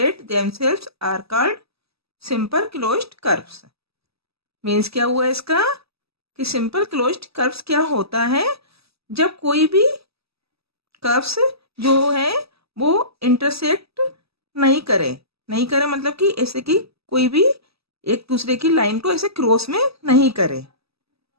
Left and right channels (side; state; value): left; late; 0.78 ms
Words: themselves are called simple closed curves. Means क्या हुआ इसका कि सिंपल क्लोज्ड कर्व्स क्या होता है जब कोई भी कर्व्स जो है वो इंटरसेक्ट नहीं करे मतलब कि ऐसे कि कोई भी एक दूसरे की लाइन को ऐसे क्रॉस में नहीं करे,